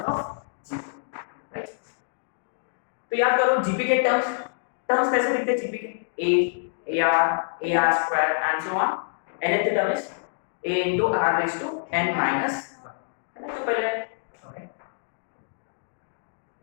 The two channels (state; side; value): silent; right; digital silence